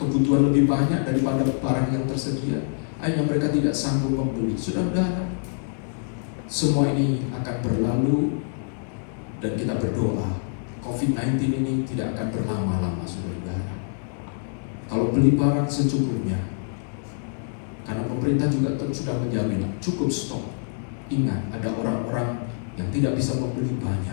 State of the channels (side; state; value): right; silent; digital silence